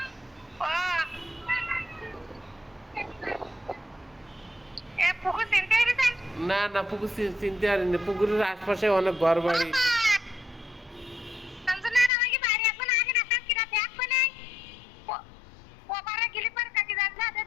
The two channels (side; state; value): right; drops out; at 12.1 s